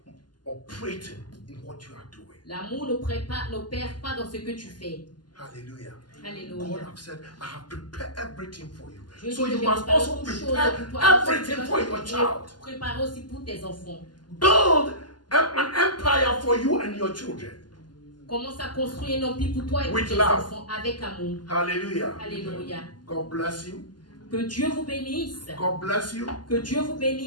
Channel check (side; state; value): right; late; 0.71 ms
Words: operating in what you are doing. L'amour n'opère pas dans ce que tu fais. Hallelujah. Alléluia. God has said, I have prepared everything for you. Dieu So dit you que j'ai must préparé also toutes choses prepare pour toi. everything for your child. Prépare aussi pour tes enfants. Build an empire for you and your children. Commence à construire un empire pour toi et pour With tes love. enfants avec amour. Hallelujah. Alléluia. God bless you. Que Dieu vous bénisse. God bless you. Que Dieu vous